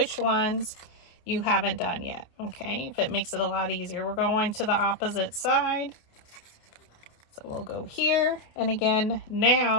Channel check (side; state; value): right; late; 28 ms